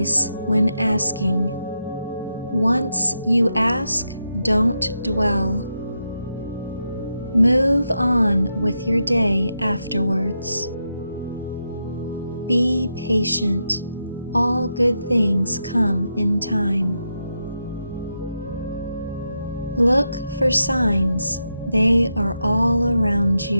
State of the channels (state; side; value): inverted; both; correlation -0.85